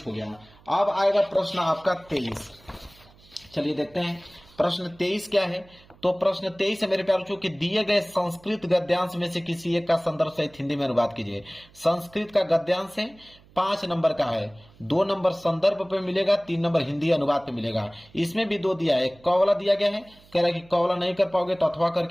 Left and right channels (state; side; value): noise; right; hum, 27 dB below the sound